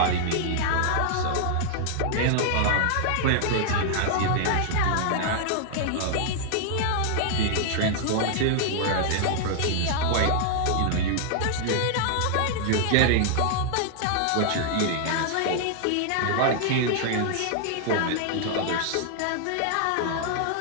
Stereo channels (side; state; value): both; different; correlation -0.01